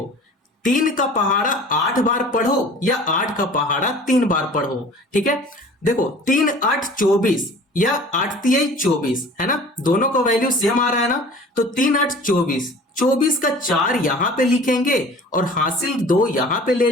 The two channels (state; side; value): normal; both; correlation 0.45